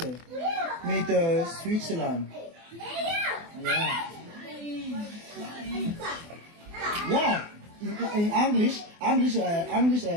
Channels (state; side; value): late; left; 24 ms